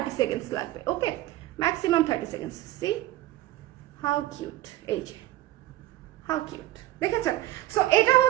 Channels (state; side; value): quieter; left; 15.9 dB